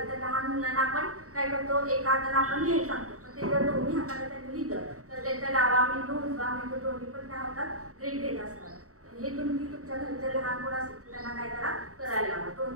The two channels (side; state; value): left; late; 0.65 ms